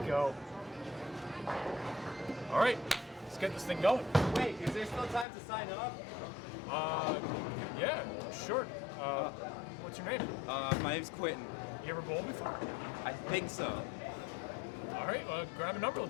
go. All right, let's get this thing going. Wait, is there still time to sign up? Yeah, sure. What's your name? My name's Quentin. You ever bowl before? I think so. All right, grab a number.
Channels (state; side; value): drops out; right; at 5.2 s